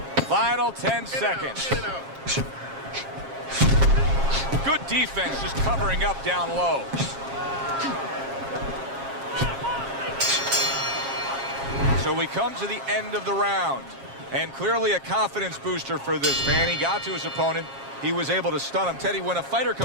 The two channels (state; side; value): late; left; 7.4 ms